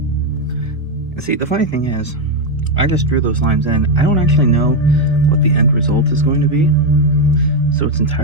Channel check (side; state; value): both; normal; correlation 0.05